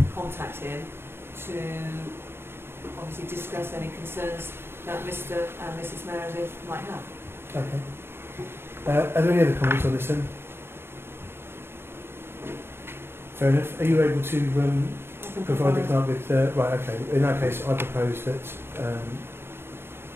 contact him to obviously discuss any concerns that Mr. and Mrs. Meredith might have. Okay. Are there any other comments on this then? Fair enough. Are you able to provide the clerk with... right, okay. In that case, I propose that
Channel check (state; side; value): late; left; 0.11 ms